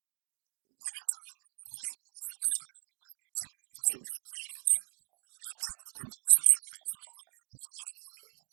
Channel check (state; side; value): silent; left; 53 dB below the other